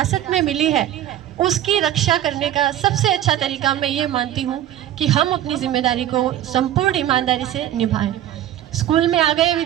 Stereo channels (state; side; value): quieter; left; 12.1 dB